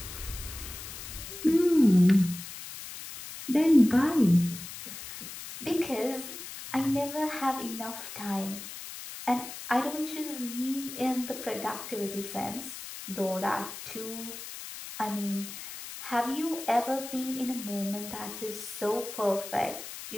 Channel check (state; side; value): noise; left; hiss, 11 dB below the sound